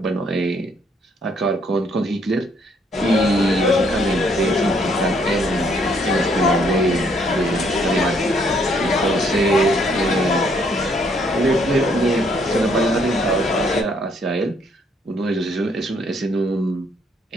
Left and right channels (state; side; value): normal; both; correlation 0.68